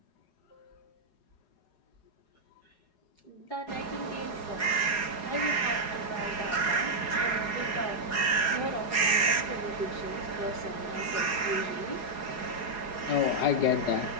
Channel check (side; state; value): right; late; 4.8 ms